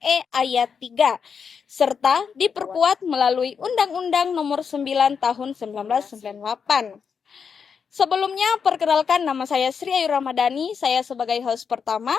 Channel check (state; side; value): quieter; right; 6.3 dB